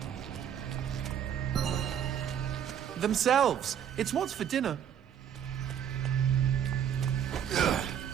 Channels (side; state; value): left; quieter; 9.1 dB